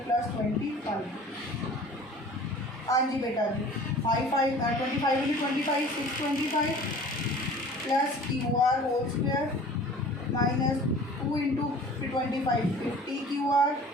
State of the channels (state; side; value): normal; both; correlation 0.45